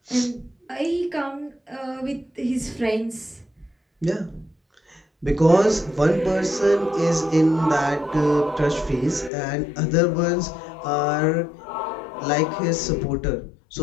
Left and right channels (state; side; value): drops out; right; at 9.3 s